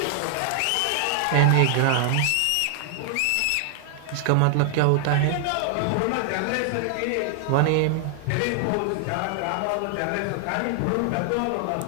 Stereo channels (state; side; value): different; both; correlation 0.00